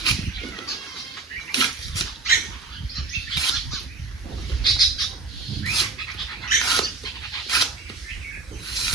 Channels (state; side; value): quieter; left; 3.7 dB